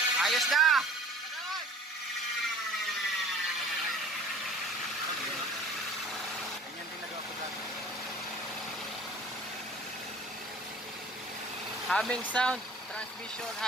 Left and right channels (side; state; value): both; normal; correlation 0.47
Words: Ayos na! Ganyan din nagawa ko dati. Humming sound. Transmission,